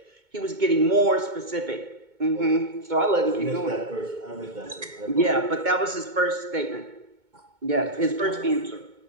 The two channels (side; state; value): left; late; 2.2 ms